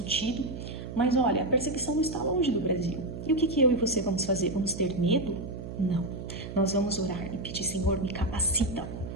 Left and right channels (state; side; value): noise; right; hum, 9 dB below the sound